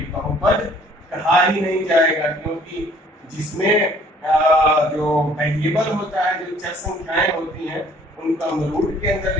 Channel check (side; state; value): both; normal; correlation 0.58